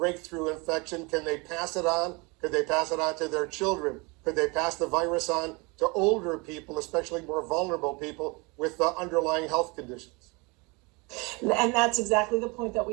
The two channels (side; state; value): left; quieter; 27.9 dB